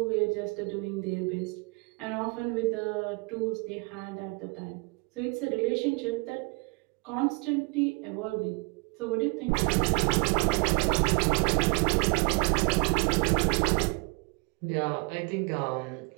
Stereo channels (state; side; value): quieter; left; 30.4 dB